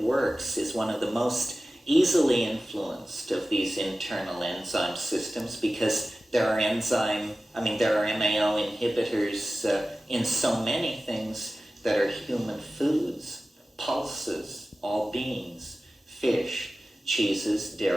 is one of the most easily influenced of these internal enzyme systems, because there are MAO inhibitors in so many things that are human foods, pulses, all beans, fish, cheeses,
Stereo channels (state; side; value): normal; both; correlation 0.95